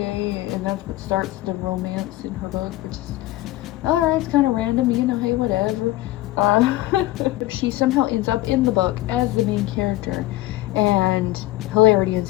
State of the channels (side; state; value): right; quieter; 16.8 dB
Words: and that's what starts the romance in her book, which is alright, it's kind of random, you know, hey, whatever. She somehow ends up in the book as the main character, and hilarity